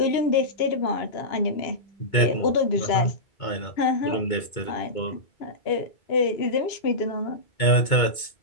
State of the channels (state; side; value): late; right; 2.2 ms